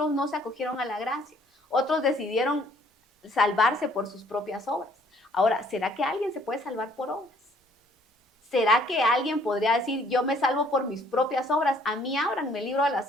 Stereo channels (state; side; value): normal; both; correlation 0.61